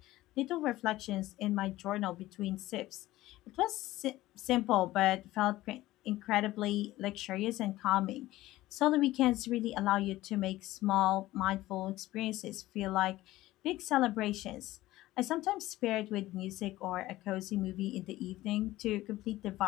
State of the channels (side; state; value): right; quieter; 16.6 dB